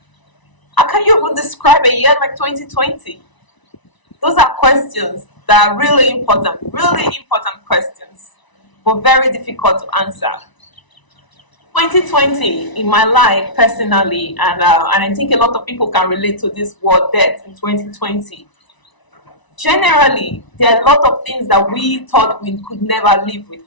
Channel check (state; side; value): late; right; 1.0 ms